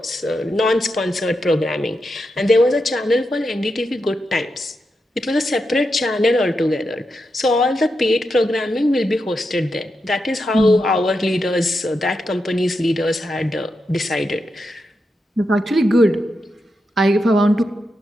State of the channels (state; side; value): normal; both; correlation 0.86